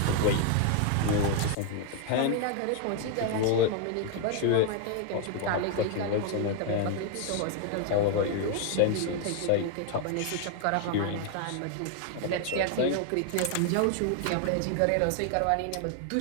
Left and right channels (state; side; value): different; both; correlation 0.00